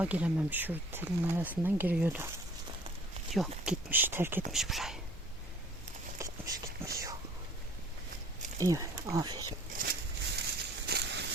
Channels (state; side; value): normal; both; correlation 0.52